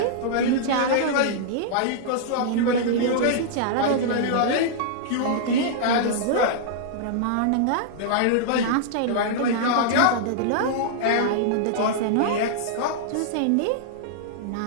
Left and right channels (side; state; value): both; different; correlation -0.02